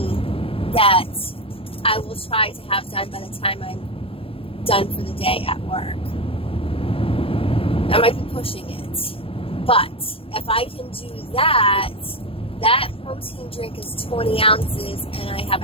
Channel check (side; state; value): right; late; 0.27 ms